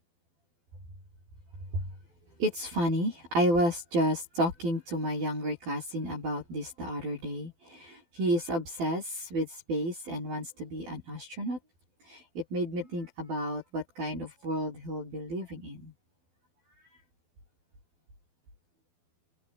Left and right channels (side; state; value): left; late; 12 ms